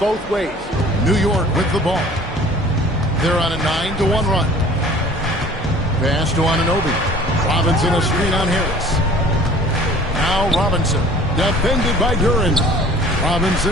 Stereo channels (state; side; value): normal; both; correlation 0.48